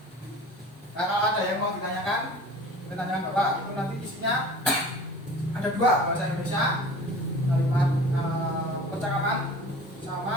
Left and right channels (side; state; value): both; normal; correlation 0.42